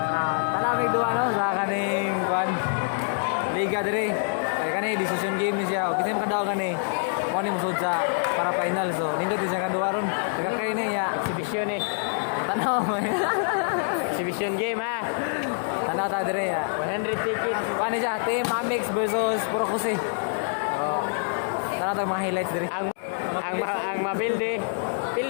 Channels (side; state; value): right; silent; digital silence